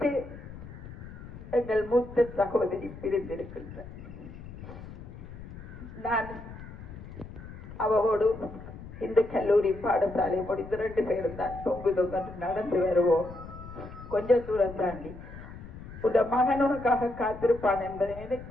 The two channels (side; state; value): left; noise; rumble, 13 dB below the sound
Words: எங்கள் மூத்த சகோதரி பிரிந்திருக்கின்றார். நான் அவரோடு இந்த கல்லூரி பாடசாலை முடிந்து 2 பேரும் தான் தொங்கு தொங்கு நடந்து வருவோம். கொஞ்சம் தூரம் தாண்டி உட மகன் உனக்காக காத்திருப்பான் என்பதை